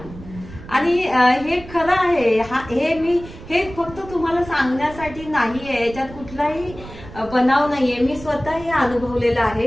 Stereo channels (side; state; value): right; noise; rumble, 16 dB below the sound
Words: आणि हे खरं आहे. हे फक्त तुम्हाला सांगण्यासाठी नाहीये, याच्यात कुठलाही बनाव नाहीये. मी स्वतः हे अनुभवलेलं